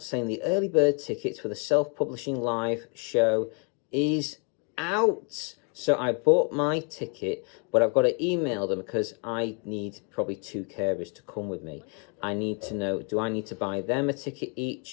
the early bird tickets for the self-publishing live show is out. So I bought my ticket, but I've got to email them because I need probably 2 carers to come with me. I need to know, do I need to buy them a ticket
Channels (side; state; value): right; quieter; 37.6 dB